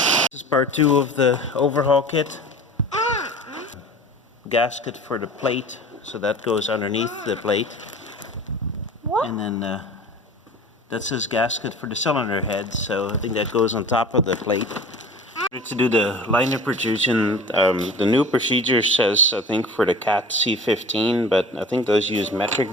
This is part 2 of the overhaul kit. Gasket for the plate, so that goes underneath the plate. What? And then that says gasket for the cylinder head, so I think that goes on top of the plate. To do the liner protrusion, the new procedure says, I think, for the Cat C15, but I think those use metric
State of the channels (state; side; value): normal; both; correlation 0.40